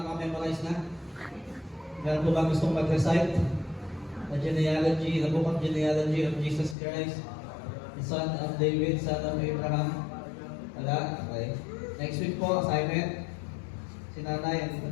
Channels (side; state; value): right; drops out; at 6.8 s